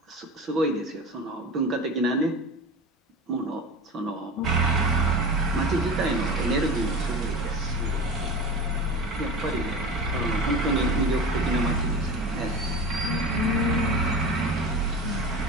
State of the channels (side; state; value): both; normal; correlation 0.31